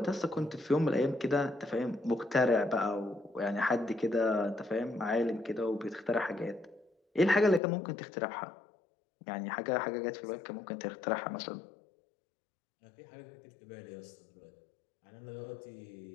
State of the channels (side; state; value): right; drops out; at 7.6 s